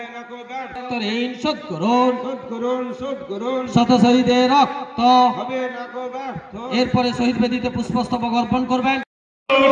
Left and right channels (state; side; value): identical; both; correlation 1.00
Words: না কো ব্যর্থ, ঋণ শোধ করুন, শোধ করুন, শোধ করুন। শত শহীদের রক্ত হবে না কো ব্যর্থ। এরপরে শহীদ বেদিতে পুষ্পস্তবক অর্পণ করবেন।